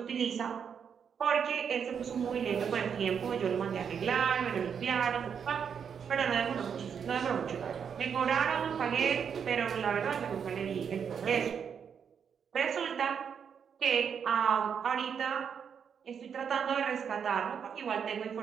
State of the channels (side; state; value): left; quieter; 7.2 dB